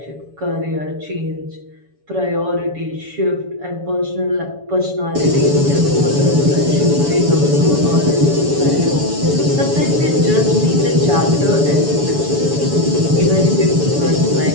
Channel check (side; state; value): left; late; 7.0 ms